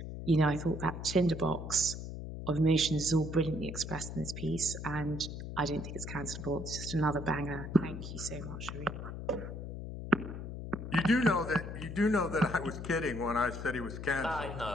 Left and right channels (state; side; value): noise; left; hum, 8 dB below the sound